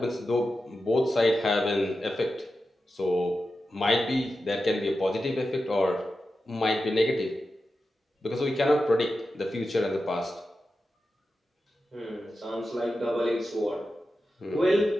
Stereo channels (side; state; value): both; normal; correlation 0.91